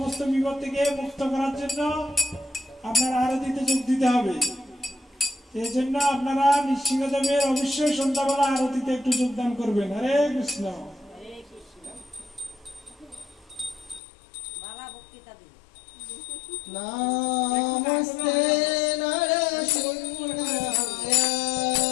বিপদ থেকে মুক্ত করার জন্য আপনার আরতিতে যোগ দিতে হবে। এই জন্য আপনারা নৃসিংহদেবের অবশ্যই সন্ধ্যাবেলা আরতিতে একটু যোগদান করবেন। হরে কৃষ্ণ। নমস্তে নরসিংহ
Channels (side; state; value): right; drops out; at 14.0 s